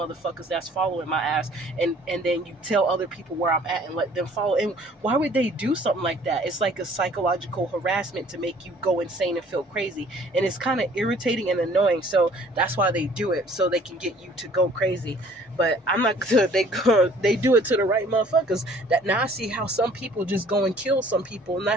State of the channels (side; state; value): both; normal; correlation 0.55